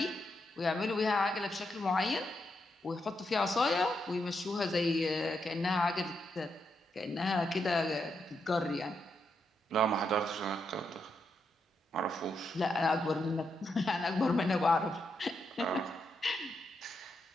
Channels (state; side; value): normal; both; correlation 0.82